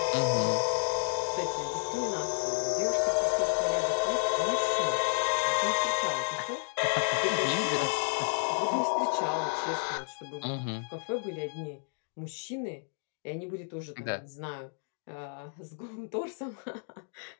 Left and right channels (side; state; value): right; silent; 57 dB below the other